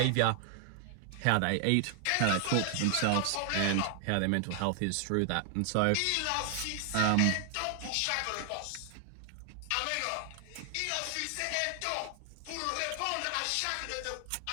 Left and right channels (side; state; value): both; different; correlation 0.00